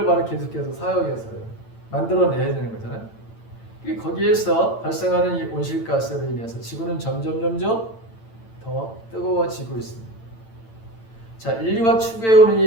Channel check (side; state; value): right; late; 8.9 ms